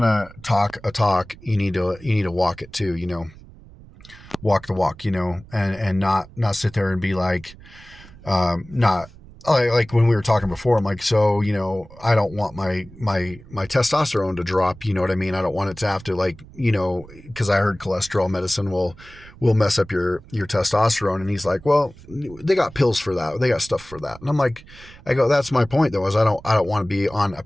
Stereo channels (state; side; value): noise; right; rumble, 20 dB below the sound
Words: to talk a talk, you need to walk it too, walk the walk, and not sit there and be like, not like when we were talking before, I'm like, so, I don't want my testosterone to drop, you know what I mean? I don't want it to have to, like, cause I heard cholesterol medicine will mess up your testosterone. And he's like, well, they got pills for that. They got stuff for that. And I'm like, that's my point though, is I don't want to be on a